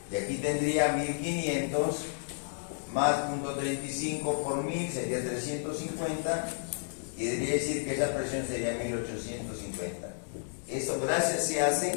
Y aquí tendría 1500 más 0.35 por 1000 sería 350, y debería decir que esa presión sería 1850. Eso gracias se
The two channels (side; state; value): right; silent; digital silence